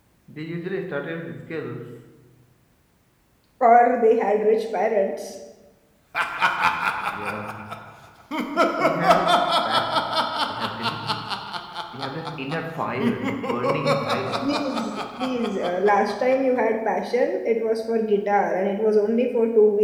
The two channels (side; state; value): both; identical; correlation 1.00